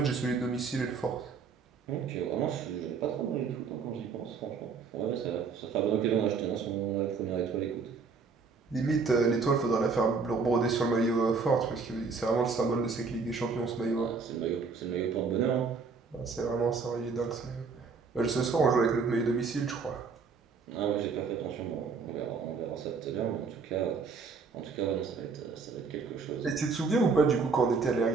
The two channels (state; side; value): quieter; left; 4.9 dB